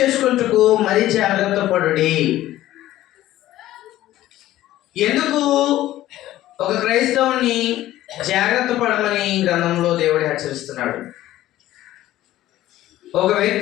మరి జాగ్రత్త పడుడి. ఎందుకు ఒక క్రైస్తవుని జాగ్రత్త పడమని గ్రంథంలో దేవుడు హెచ్చరిస్తున్నాడు? ఒక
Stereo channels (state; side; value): quieter; right; 14.5 dB